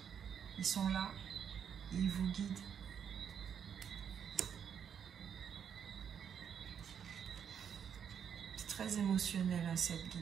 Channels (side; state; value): left; quieter; 7.9 dB